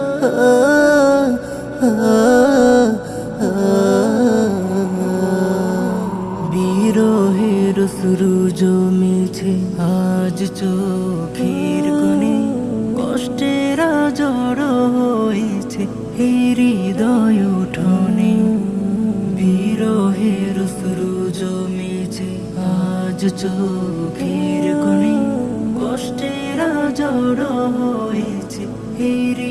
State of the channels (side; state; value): both; identical; correlation 1.00